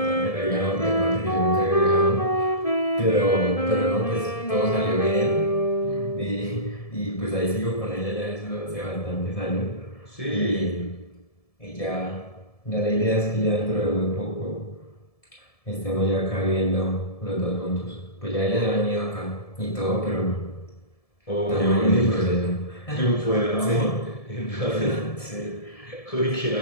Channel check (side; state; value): right; late; 1.7 ms